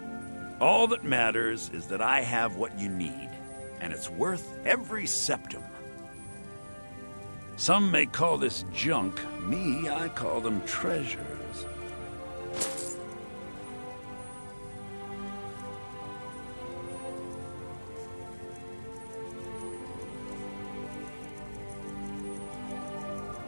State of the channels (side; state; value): both; inverted; correlation -1.00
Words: All that matters is that I have what you need, and it's worth every septim. Some may call this junk. Me, I call them treasures.